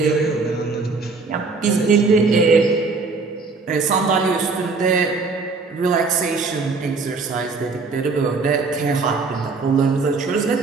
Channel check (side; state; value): left; quieter; 4.2 dB